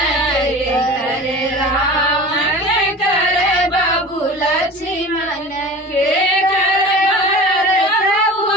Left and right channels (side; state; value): both; normal; correlation 0.37